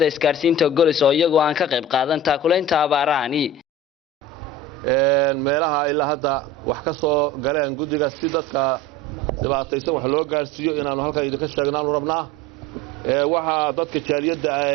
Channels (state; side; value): normal; both; correlation 0.35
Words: isgaarsiinta Golis oo iyagu aan ka qayb qaadan taakulaynta abaarahani meelaha ilaa hadda wax ka soo galeen guddiga si dadka dhibaataysan wax loo gaarsiiyo inaanu halkan idinka sheegnaan rabnaa waxa dadka jaaliyadda